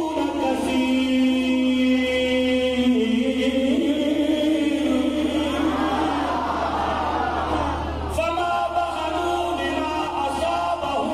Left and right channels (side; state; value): both; identical; correlation 1.00